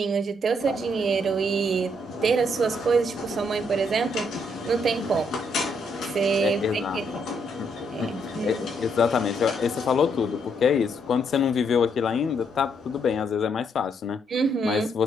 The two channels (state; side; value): normal; both; correlation 0.74